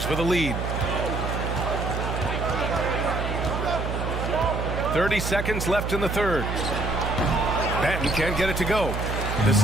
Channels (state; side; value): noise; right; hum, 3 dB below the sound